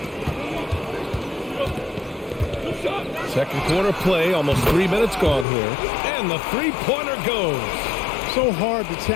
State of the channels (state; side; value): drops out; right; at 5.5 s